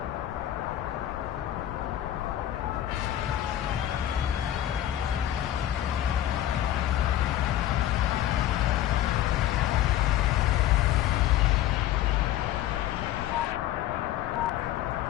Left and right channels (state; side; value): quieter; right; 12.6 dB